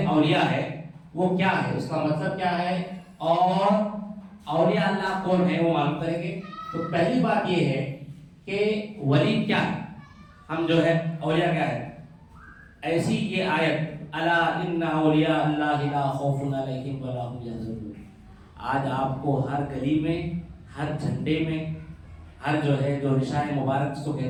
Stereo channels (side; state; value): both; identical; correlation 1.00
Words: اولیاء ہے، وہ کیا ہے، اس کا مطلب کیا ہے، اور اولیاء اللہ کون ہے وہ معلوم کریں گے۔ تو پہلی بات یہ ہے کہ ولی کیا ہے، ہم جو ہے اولیاء کیا ہے۔ ایسی یہ آیت، الا ان اولیاء اللہ لا خوف علیہم ولا هم يحزنون، آج آپ کو ہر گلی میں، ہر جھنڈے میں، ہر جو ہے جو نشان مبارک جس کو